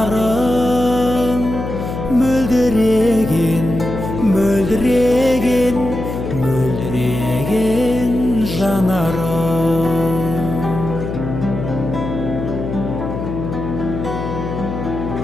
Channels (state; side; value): noise; left; hum, 6 dB below the sound